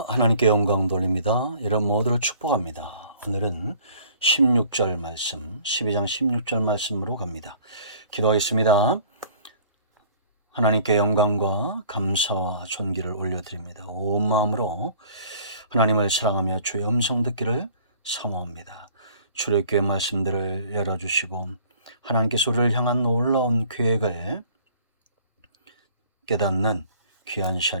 하나님께 영광 돌립니다. 이런 모두를 축복합니다. 오늘은 16절 말씀, 12장 16절 말씀으로 갑니다. 기도하겠습니다. 하나님께 영광과 감사와 존귀를 올려드립니다. 온 마음으로 하나님을 사랑하며 주의 음성 듣기를 사모합니다. 출애굽기의 말씀들을 열어주시고 하나님께서 우리를 향한 놀라운 계획을 깨닫는 귀한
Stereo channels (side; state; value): both; inverted; correlation -0.51